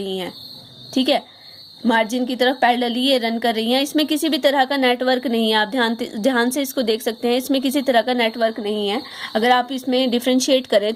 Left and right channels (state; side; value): identical; both; correlation 1.00